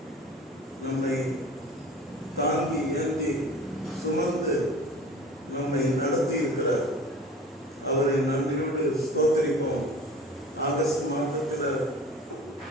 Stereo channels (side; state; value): both; normal; correlation 0.41